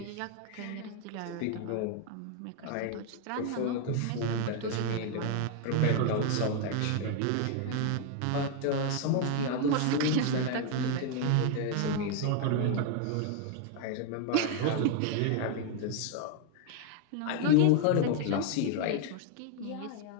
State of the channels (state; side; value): different; both; correlation 0.00